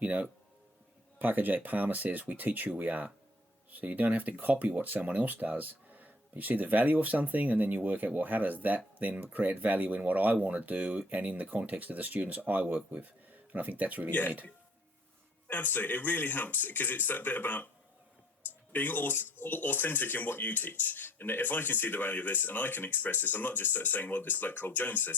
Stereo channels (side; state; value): both; normal; correlation 0.57